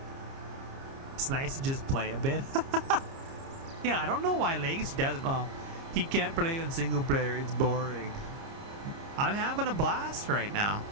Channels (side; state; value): left; late; 30 ms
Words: It's nice to just play a bit. Yeah, I don't know why Legacy doesn't. Well, he can't play on single player. It's boring. I'm having a blast right now.